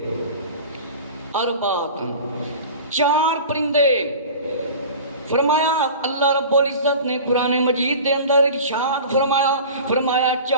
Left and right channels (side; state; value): both; inverted; correlation -0.37